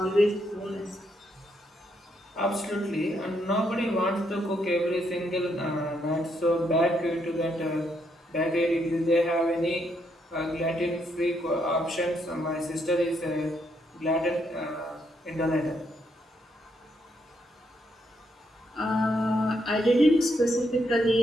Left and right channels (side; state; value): both; normal; correlation 0.76